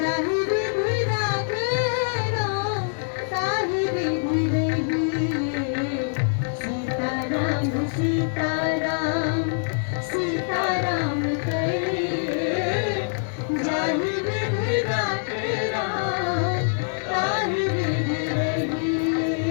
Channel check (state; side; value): silent; right; digital silence